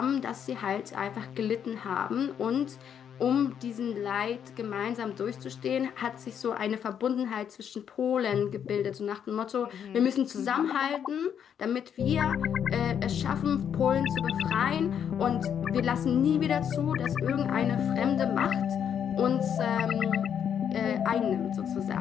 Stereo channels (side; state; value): right; quieter; 8.4 dB